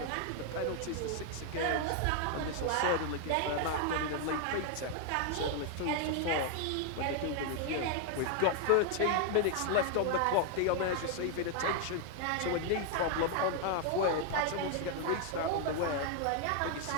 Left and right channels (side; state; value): both; different; correlation 0.00